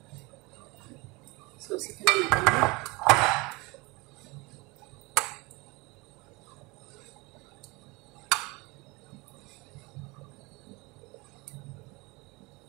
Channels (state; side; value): quieter; left; 25.5 dB